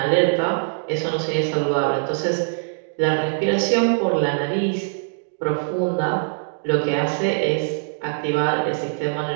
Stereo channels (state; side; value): silent; left; digital silence